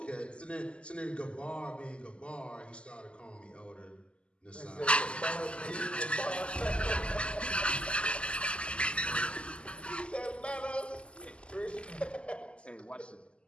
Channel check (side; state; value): right; late; 0.053 ms